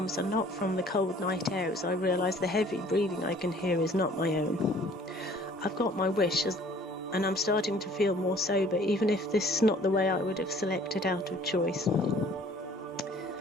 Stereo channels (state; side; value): normal; both; correlation 0.54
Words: are not from the cold night air, as I realise the heavy breathing I can hear is not my own. I've got my wish, and I'm starting to feel more sober, even if this is not the way I would have selected out of choice.